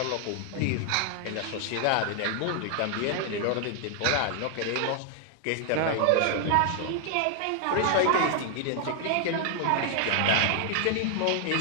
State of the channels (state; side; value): different; both; correlation 0.00